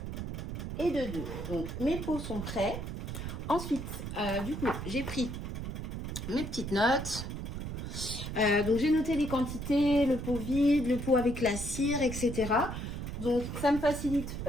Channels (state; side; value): noise; right; rumble, 6 dB below the sound